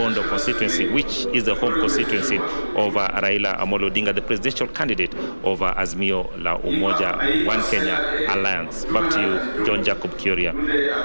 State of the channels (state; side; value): inverted; both; correlation -1.00